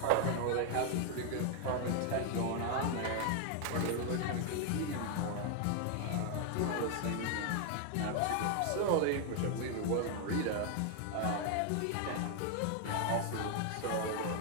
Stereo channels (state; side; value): different; both; correlation 0.00